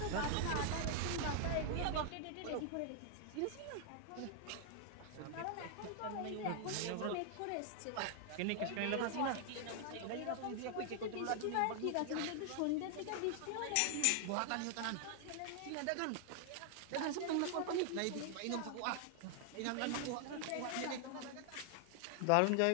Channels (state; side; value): different; both; correlation 0.00